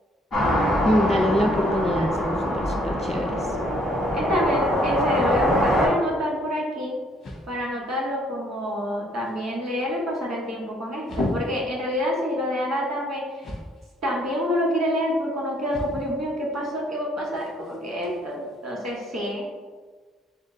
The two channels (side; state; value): both; normal; correlation 0.64